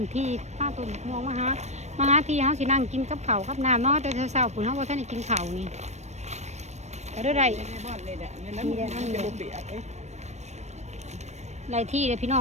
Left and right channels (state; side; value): late; left; 0.33 ms